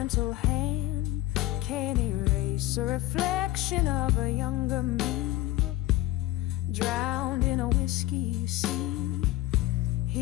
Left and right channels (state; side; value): quieter; right; 16.7 dB